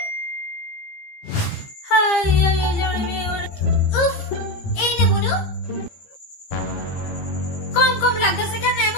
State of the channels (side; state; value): right; late; 15 ms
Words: এই নে বনু। কম কম লাগতেছে কেন